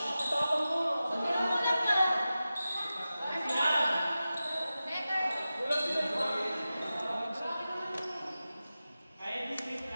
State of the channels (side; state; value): both; inverted; correlation -0.94